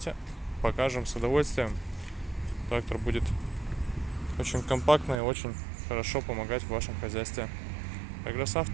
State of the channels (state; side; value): drops out; left; at 5.2 s